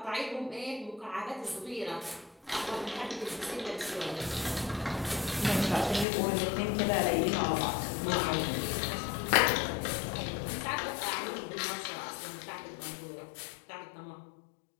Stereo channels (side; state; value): right; drops out; at 6.1 s